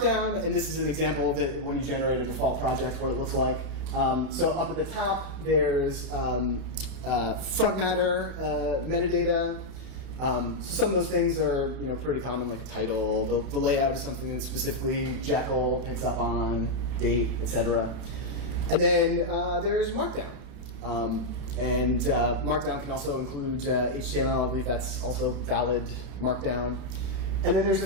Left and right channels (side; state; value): left; late; 31 ms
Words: and this is an example that when you generate a default project, what it looks like. So up at the top, there's front matter metadata. So some of those things are pretty common, like a title. The layout is something that specifically Jekyll picks up on, date, etc. And then there's Markdown. And Markdown can also include HTML. I believe that's also valid Markdown. And then there's a